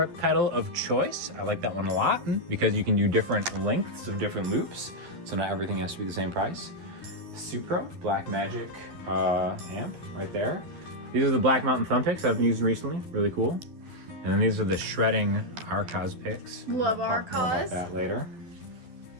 pedal of choice. I like that one a lot because you can do different lengths of different loops, so not everything has to be the same price. Supro Black Magic amp right there. These are the Black Mountain thumb picks I've been using recently. Really cool. And then these are the shredding Arcos picks. Love I'll talk more Arcos. about that later.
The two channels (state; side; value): late; left; 12 ms